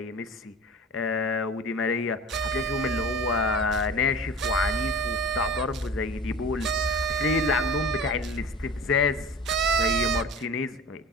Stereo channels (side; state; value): both; normal; correlation 0.37